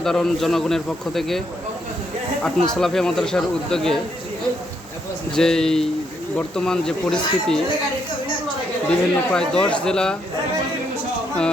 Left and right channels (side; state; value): both; normal; correlation 0.75